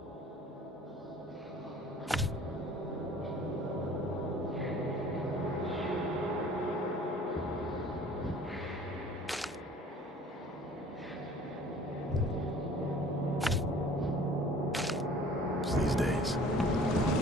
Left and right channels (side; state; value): both; normal; correlation 0.49